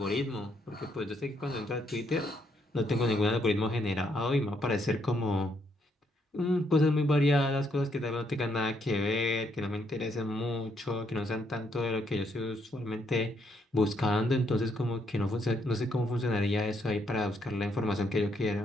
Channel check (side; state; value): both; normal; correlation 0.74